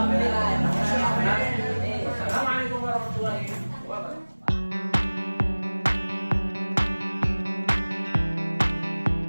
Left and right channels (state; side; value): inverted; both; correlation -1.00